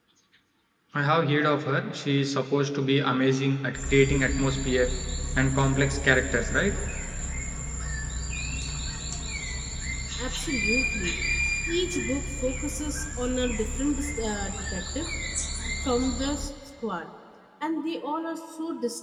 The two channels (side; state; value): both; identical; correlation 1.00